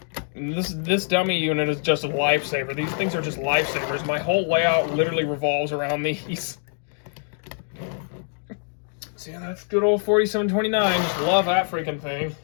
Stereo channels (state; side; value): silent; right; 56 dB below the other